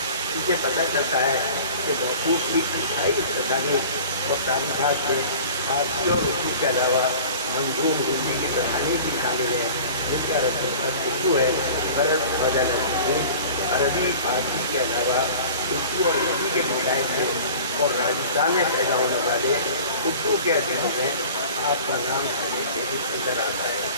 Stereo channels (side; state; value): both; inverted; correlation -0.42